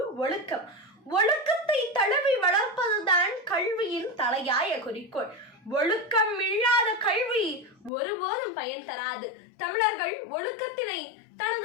ஒழுக்கம். ஒழுக்கத்தை தழுவி வளர்ப்பதுதான் கல்வியின் தலையாய குறிக்கோள். ஒழுக்கம் இல்லாத கல்வி ஒருபோதும் பயன் தராது. தமிழர்கள் ஒழுக்கத்தினை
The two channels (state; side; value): drops out; right; at 7.9 s